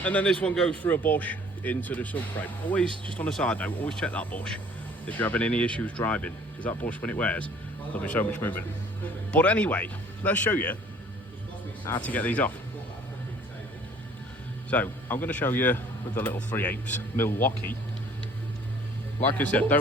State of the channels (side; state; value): both; normal; correlation 0.54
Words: then this one goes through a bush into the subframe. Always, just on a side note, always check that bush if you're having any issues driving, because that bush, when it wears, there'll be so much movement. But anyway, let's show you how to get these off. So I'm going to show you with the little 3/8 Milwaukee. Like I said,